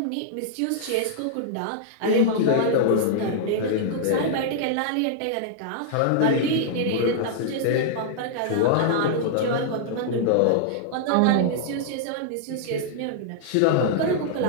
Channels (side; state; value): both; different; correlation -0.01